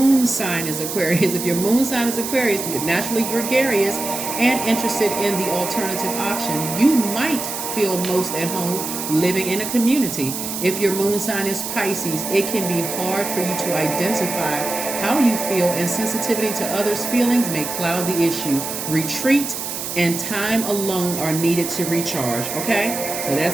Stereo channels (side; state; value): right; noise; hiss, 5 dB below the sound